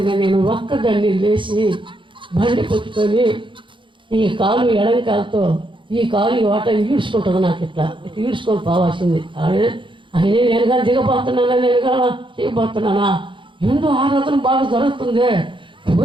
నేను ఒక్కదాన్ని లేచి బండి పెట్టుకొని ఈ కాలు ఎడంకాలతో ఈ కాలు వాట ఈడ్చుకుంటుంది. నాకు ఇట్లా ఈడ్చుకొని పోవాల్సింది. ఆయనే నేను కానీ దిగబోతున్నానా, నేను కానీ చేయబోతున్నానా, ఎందుకు ఆరాధన బాగా జరుగుతుంది,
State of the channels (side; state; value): left; late; 0.24 ms